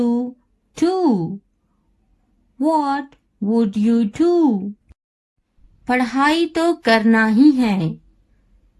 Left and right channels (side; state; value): both; identical; correlation 1.00